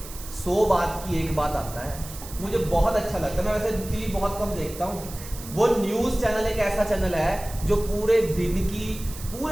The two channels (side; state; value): right; noise; hiss, 14 dB below the sound